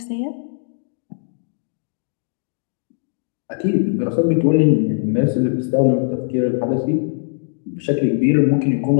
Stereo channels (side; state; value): right; silent; digital silence